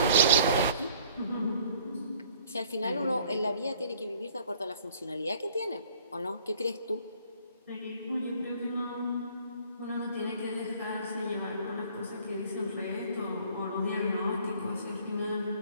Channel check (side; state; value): both; inverted; correlation -0.57